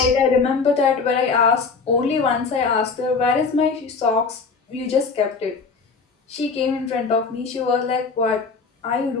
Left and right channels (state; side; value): quieter; right; 4.8 dB